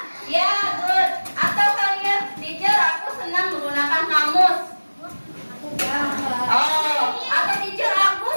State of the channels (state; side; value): inverted; both; correlation -1.00